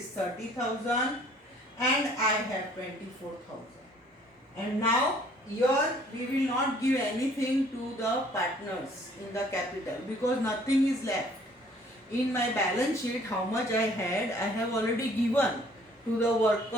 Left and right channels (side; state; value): both; normal; correlation 0.57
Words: 30,000 and I have 24,000. And now here we will not give anything to the partners in the capital, because nothing is left. In my balance sheet, how much I had, I have already given to the